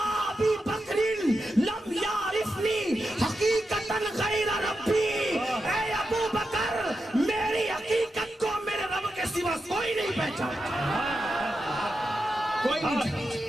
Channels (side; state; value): both; normal; correlation 0.88